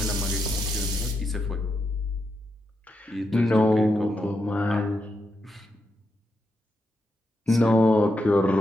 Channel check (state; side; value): normal; both; correlation 0.84